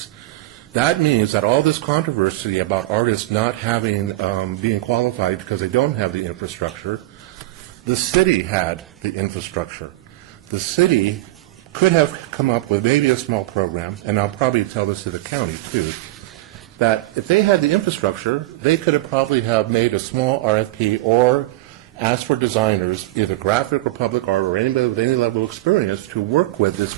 That means that all this controversy about artists not having, being qualified because they don't have the infrastructure, the city had the infrastructure. The city could have come up with maybe a small program, and I'll probably tell this to the county too, that if they had the infrastructure, they could have probably have made a small RFP or asked for designers, either graphic or public art or anybody with any level of experience, to work with this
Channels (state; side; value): quieter; left; 17.6 dB